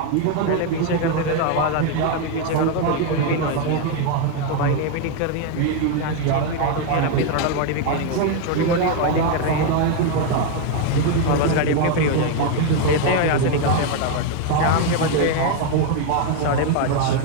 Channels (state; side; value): different; both; correlation 0.01